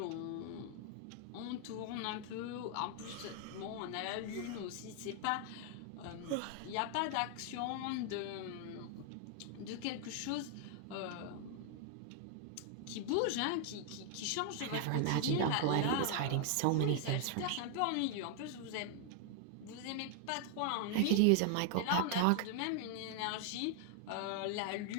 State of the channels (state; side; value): different; both; correlation 0.00